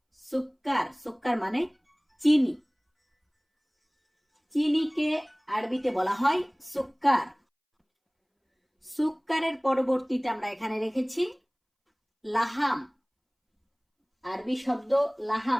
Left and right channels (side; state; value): both; identical; correlation 1.00